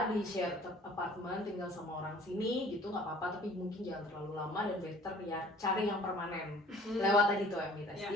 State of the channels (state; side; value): normal; both; correlation 0.52